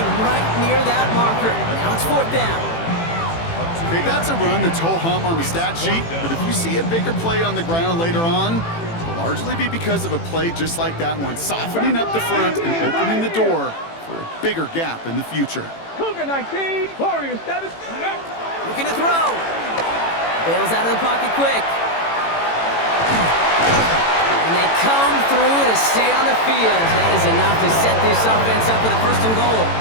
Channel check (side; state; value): right; late; 18 ms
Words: right near that marker. Now it's 4th down. Okay, that's a run that's ho-hum on the stat sheet, but if you see a bigger play on the ground later on, it'll largely be because of a play just like that one, softening up the front and opening the door for a bigger gap in the future. Cougar 19, Warriors 7. Looking to throw. Bails out of the pocket quick. And they come through to stay on the field. That is enough to set this offense up with a 1st and goal.